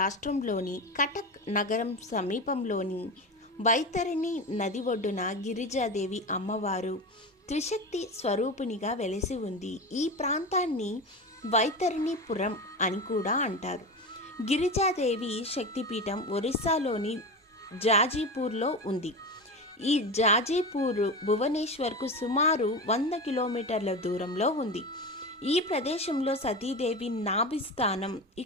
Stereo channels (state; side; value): normal; both; correlation 0.24